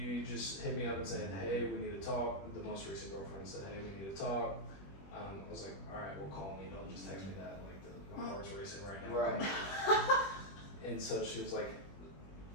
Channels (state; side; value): late; right; 21 ms